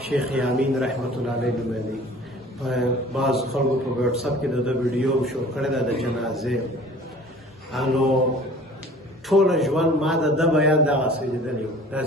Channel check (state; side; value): normal; both; correlation 0.47